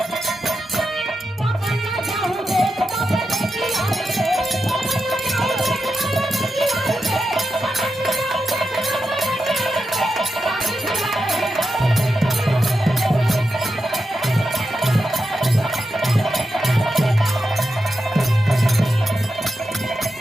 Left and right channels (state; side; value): normal; both; correlation 0.89